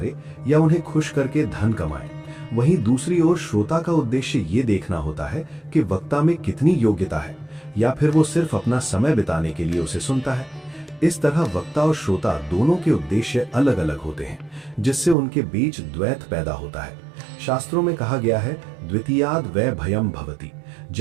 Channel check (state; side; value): drops out; left; at 15.2 s